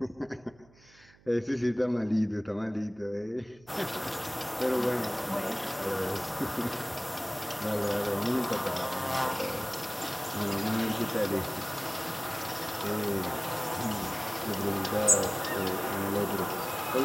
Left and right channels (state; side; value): noise; right; hum, 27 dB below the sound